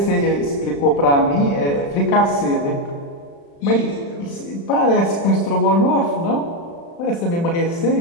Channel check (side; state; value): right; late; 35 ms